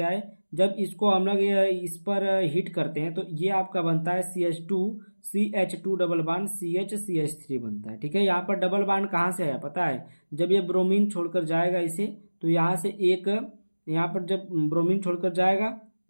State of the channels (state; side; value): inverted; both; correlation -1.00